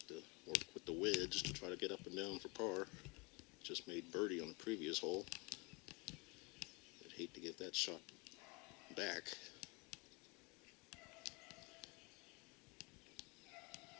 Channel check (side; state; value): right; quieter; 28.7 dB